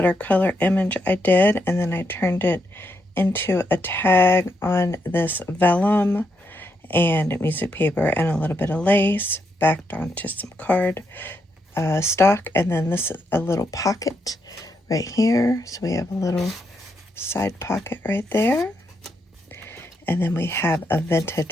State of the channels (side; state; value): both; normal; correlation 0.80